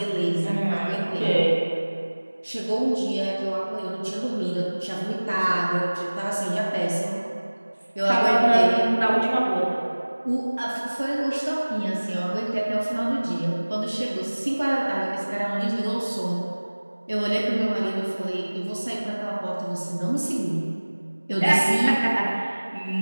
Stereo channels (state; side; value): inverted; both; correlation -1.00